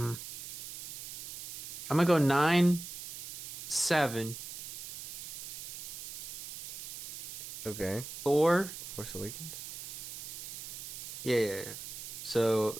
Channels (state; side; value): noise; right; hiss, 9 dB below the sound